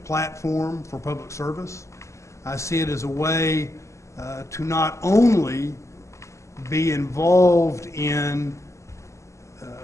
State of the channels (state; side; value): late; right; 0.14 ms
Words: platform for public service. I see it as a way to not only be involved in